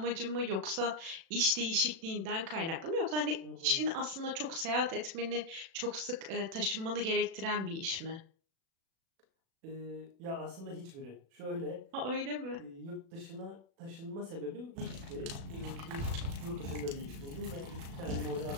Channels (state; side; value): late; left; 36 ms